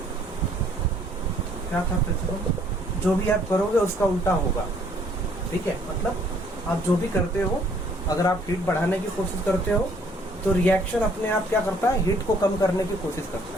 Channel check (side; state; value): both; normal; correlation 0.62